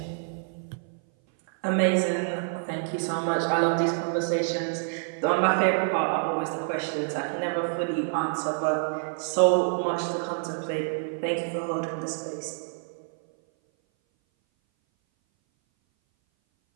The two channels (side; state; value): left; silent; 58 dB below the other